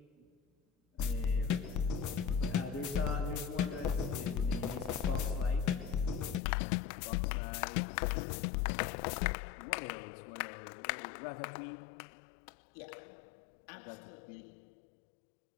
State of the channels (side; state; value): right; drops out; at 6.4 s